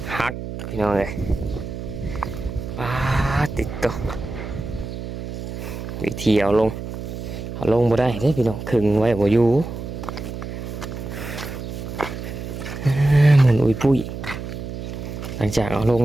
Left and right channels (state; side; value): noise; right; hum, 8 dB below the sound